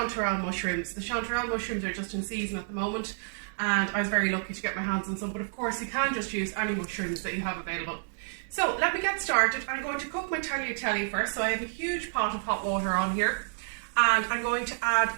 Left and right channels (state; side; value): silent; left; digital silence